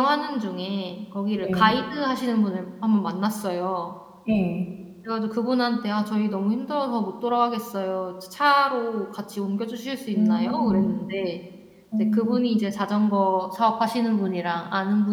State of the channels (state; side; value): identical; both; correlation 1.00